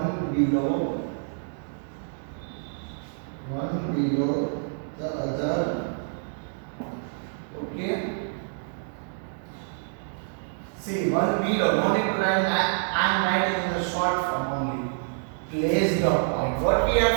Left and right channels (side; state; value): left; silent; digital silence